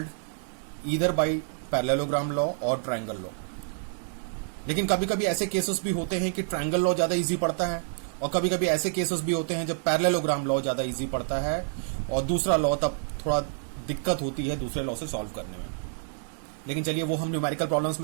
either by parallelogram law और ट्रायंगल लॉ। लेकिन कभी कभी ऐसे केसेस भी होते हैं कि ट्रायंगल लॉ ज्यादा इजी पड़ता है और कभी कभी ऐसे केसेस भी होते हैं जब पैरेललोग्राम लॉ ज्यादा इजी पड़ता है और दूसरा लॉ तब थोड़ा दिक्कत होती है दूसरे लॉ से सॉल्व करने में। लेकिन चलिए वो हम न्यूमेरिकल प्रॉब्लम्स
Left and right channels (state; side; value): silent; left; 59 dB below the other